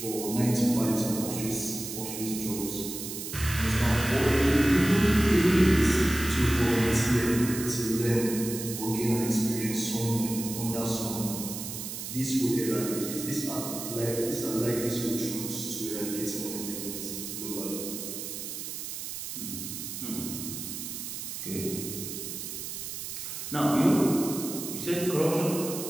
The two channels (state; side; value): noise; right; hiss, 7 dB below the sound